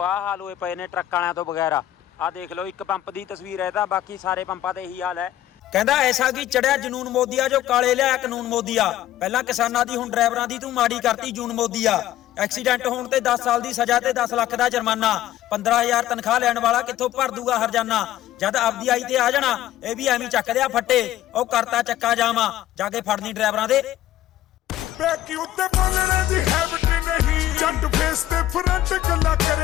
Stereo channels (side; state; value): right; quieter; 13.4 dB